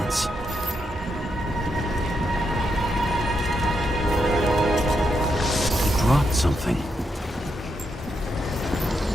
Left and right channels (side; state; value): both; normal; correlation 0.81